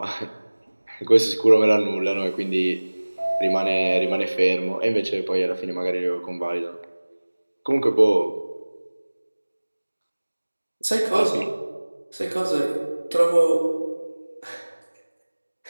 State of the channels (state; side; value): inverted; both; correlation -1.00